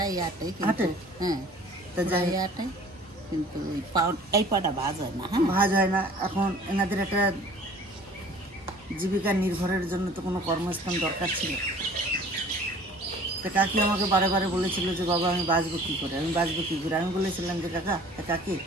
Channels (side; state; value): both; normal; correlation 0.49